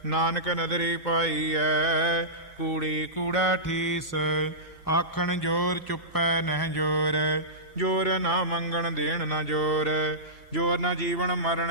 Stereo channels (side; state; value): both; normal; correlation -0.17